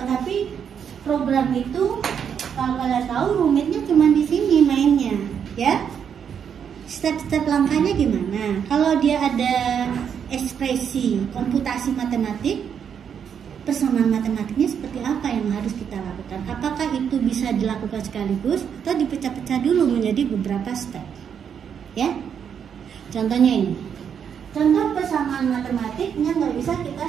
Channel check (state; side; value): quieter; left; 7.8 dB